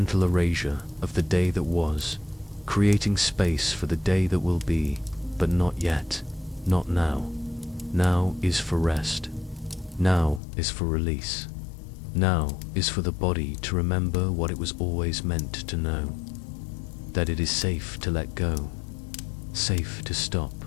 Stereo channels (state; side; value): drops out; right; at 10.4 s